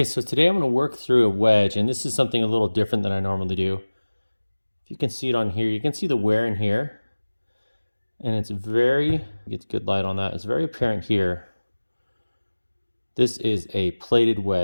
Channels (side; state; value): both; inverted; correlation -1.00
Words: so today I'm going to work through a wedge, and this is something a little different than I normally do. If you can see it on here, you can see the wear in here, and it's very, get good light on that, it's very apparent here. This is a plated